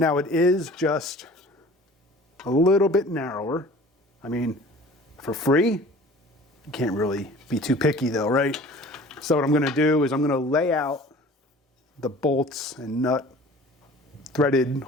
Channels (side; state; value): both; normal; correlation 0.45